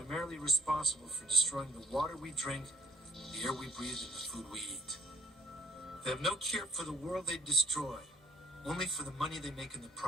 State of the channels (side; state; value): both; normal; correlation 0.61